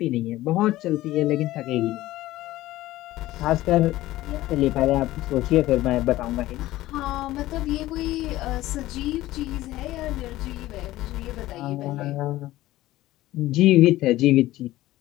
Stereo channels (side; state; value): right; quieter; 16.3 dB